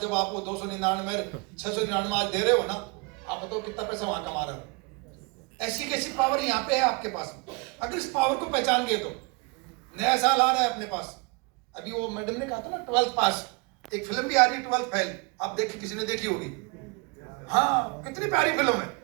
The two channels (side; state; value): left; quieter; 29.0 dB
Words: आप वो 299 699 आज दे रहे हो ना, आप बताओ कितना पैसा वहां कमा रहे हो। ऐसी कैसी पावर यहाँ पे है आपके पास। अगर इस पावर को पहचान गए तो नया साल आ रहा है अपने पास। अभी वो मैडम ने कहा था ना 12th पास, एक फिल्म भी आ रही है 12th फेल, आप देखी, किसी ने देखी होगी। हाँ, कितनी प्यारी फिल्म है।